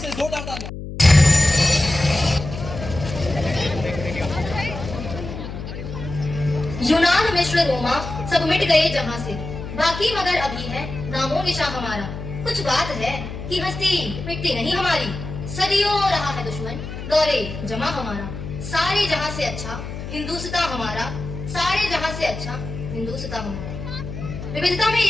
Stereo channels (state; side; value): noise; left; hum, 8 dB below the sound